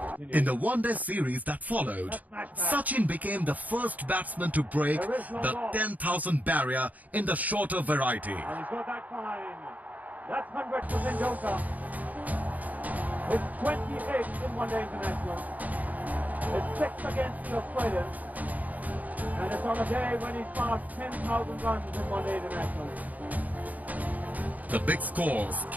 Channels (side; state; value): left; late; 0.076 ms